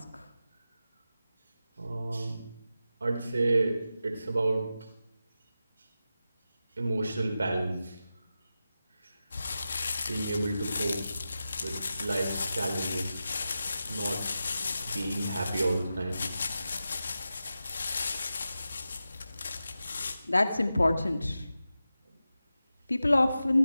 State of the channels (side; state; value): both; inverted; correlation -0.92